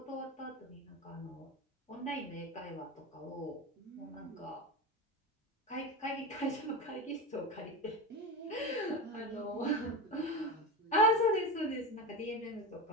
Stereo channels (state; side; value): normal; both; correlation 0.22